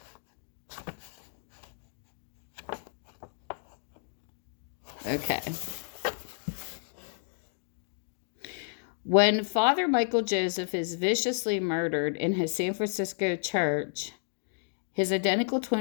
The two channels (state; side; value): silent; right; digital silence